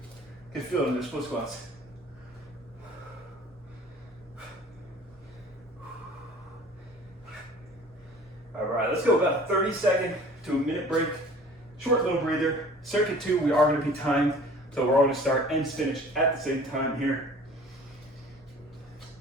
Can feel it in the split squats. All right, let's go about 30 second to a minute break. Short little breather. Circuit 2, we are going to be timed, so we're all going to start and finish at the same time here.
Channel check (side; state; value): both; normal; correlation 0.47